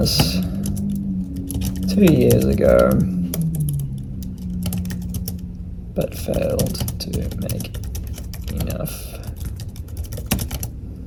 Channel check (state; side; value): identical; both; correlation 1.00